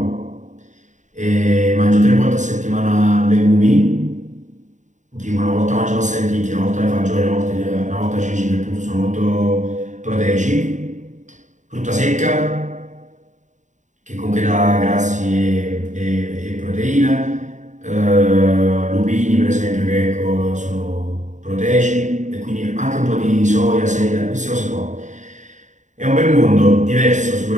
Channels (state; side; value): late; left; 0.35 ms